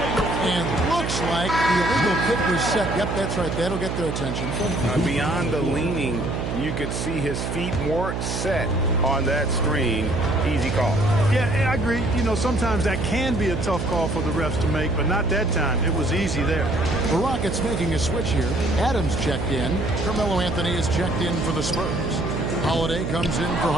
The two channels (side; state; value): right; noise; hum, 3 dB below the sound